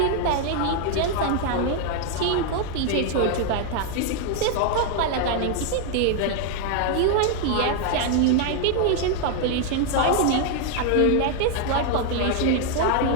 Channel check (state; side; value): different; both; correlation 0.00